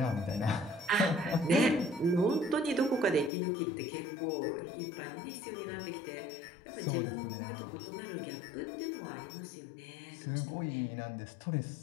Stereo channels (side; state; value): right; drops out; at 3.3 s